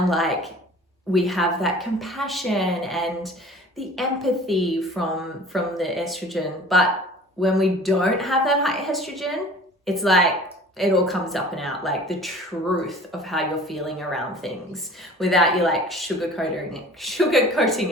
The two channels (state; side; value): normal; both; correlation 0.45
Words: like, we have that compassion and the empathy from the estrogen. But when we don't have that high estrogen, it's like it all comes up and out, like the truth of how you're feeling around things, without you like sugarcoating